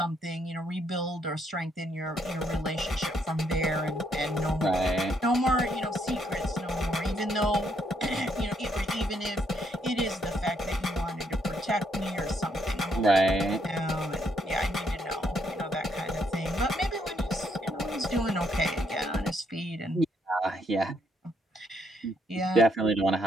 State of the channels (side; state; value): both; normal; correlation 0.73